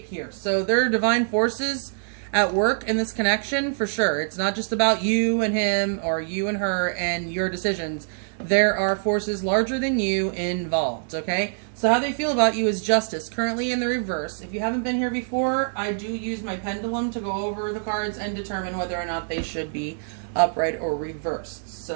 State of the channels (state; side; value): silent; left; 62 dB below the other